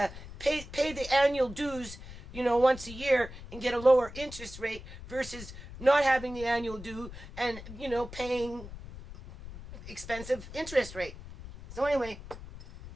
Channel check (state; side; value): noise; left; rumble, 13 dB below the sound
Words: Pay the annual dues, you know, once a year and get a lower interest rate versus not having the annual due and, you know, paying expensive interest rate. So anyway,